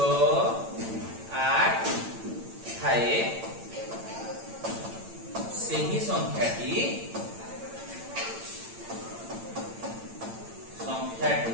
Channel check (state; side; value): late; left; 8.9 ms